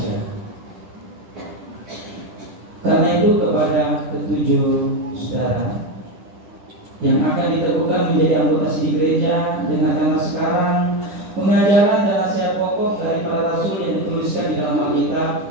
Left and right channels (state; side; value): late; left; 10 ms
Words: Karena itu kepada ketujuh saudara yang akan diteguhkan menjadi anggota CD gereja, dengarkanlah sekarang pengajaran dan nasihat pokok dari para rasul yang dituliskan di dalam Alkitab